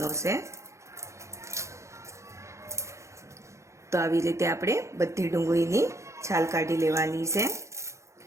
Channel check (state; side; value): late; left; 0.14 ms